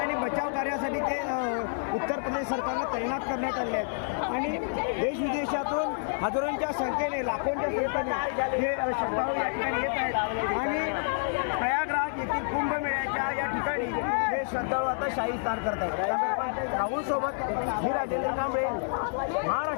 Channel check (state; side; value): silent; right; digital silence